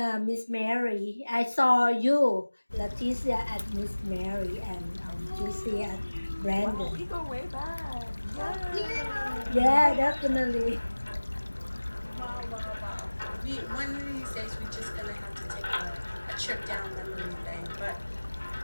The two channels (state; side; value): inverted; both; correlation -1.00